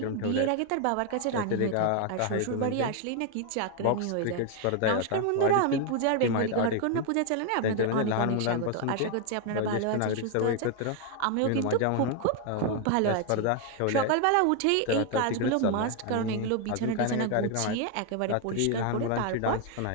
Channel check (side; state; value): both; different; correlation 0.01